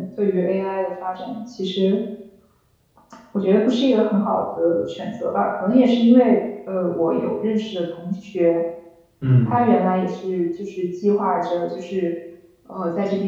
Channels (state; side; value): identical; both; correlation 1.00